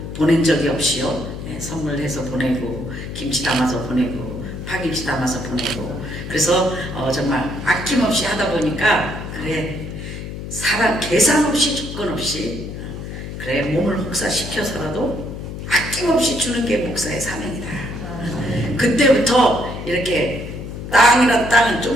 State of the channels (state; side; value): noise; left; hum, 8 dB below the sound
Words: 보낸 적이 없이요. 선물해서 보내고 김치 담아서 보내고 파김치 담아서 보내고 그래서 정말 아낌없이 하다 보니까 그래 사람 계산 없이 조건 없이 그래 몸을 혹사시켜서라도 아낌없이 주는 게 목사의 사명이다. 그때부터 이렇게 땅이란 땅은